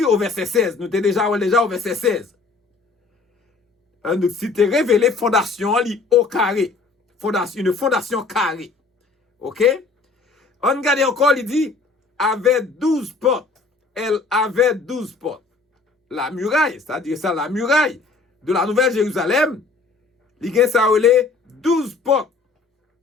au verset 16, nous étions déjà au verset 16. Une cité révélée, fondation, au carré. Une fondation carrée. Ok? On regarde encore, il dit, avait 12 portes. Elle avait 12 portes. La muraille, c'est-à-dire ça, la muraille de la Nouvelle Jérusalem, il y a ça, 12 portes.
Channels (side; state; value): right; quieter; 4.1 dB